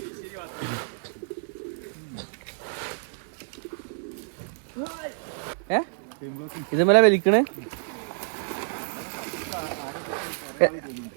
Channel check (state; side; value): silent; left; digital silence